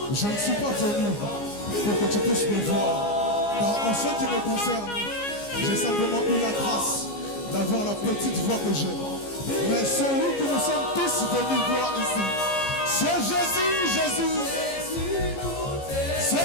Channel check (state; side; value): late; right; 15 ms